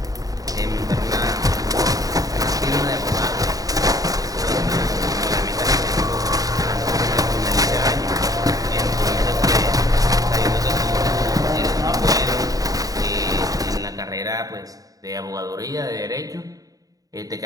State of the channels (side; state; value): left; late; 0.18 ms